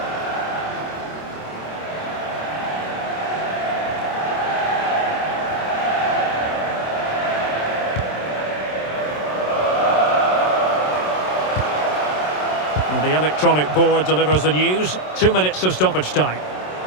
And the electronic board delivers the news. 2 minutes of stoppage time.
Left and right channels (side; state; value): right; late; 27 ms